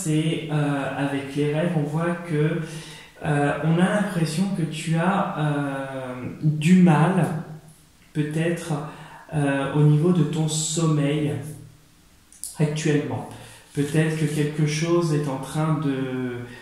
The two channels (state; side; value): identical; both; correlation 1.00